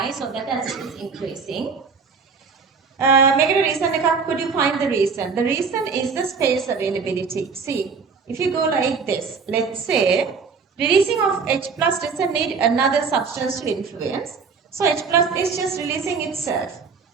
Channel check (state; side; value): quieter; left; 5.3 dB